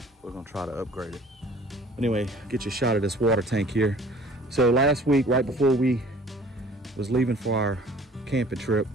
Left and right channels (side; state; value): both; normal; correlation 0.50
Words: try to upgrade it. Anyway, get you a shot of this water tank here. So last week, right before we was leaving for our camping trip,